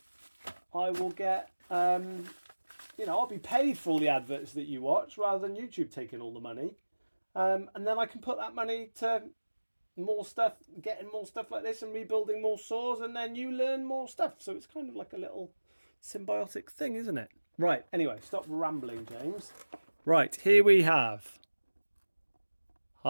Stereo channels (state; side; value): inverted; both; correlation -1.00